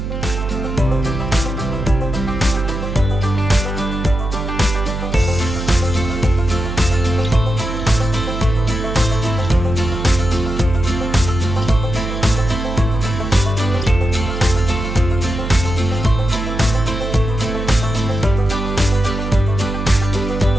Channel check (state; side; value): noise; right; hum, 4 dB below the sound